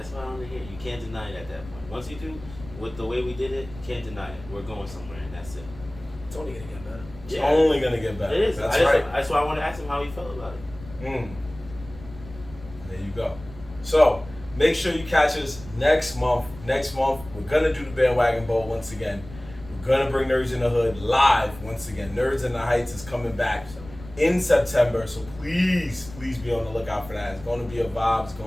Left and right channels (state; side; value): noise; left; rumble, 17 dB below the sound